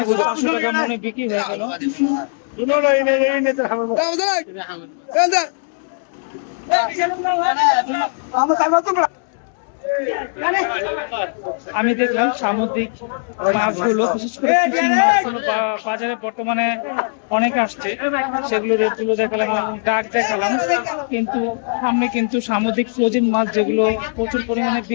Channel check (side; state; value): right; silent; 66 dB below the other